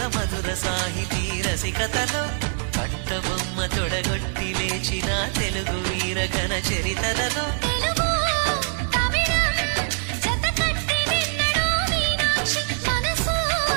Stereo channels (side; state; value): left; silent; 63 dB below the other